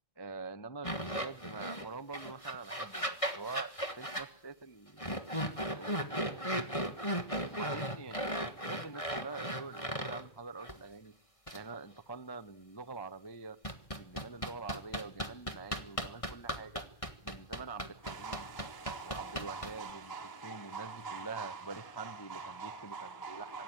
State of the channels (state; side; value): late; right; 1.6 ms